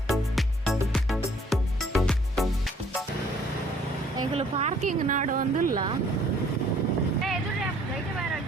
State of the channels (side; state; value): both; normal; correlation 0.59